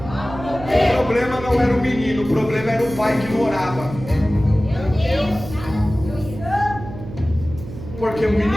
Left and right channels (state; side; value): noise; right; hum, 12 dB below the sound